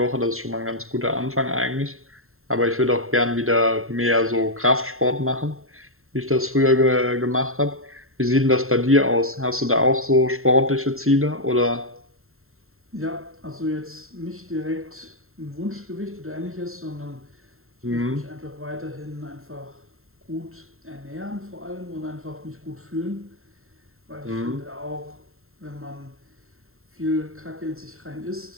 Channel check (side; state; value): left; late; 0.62 ms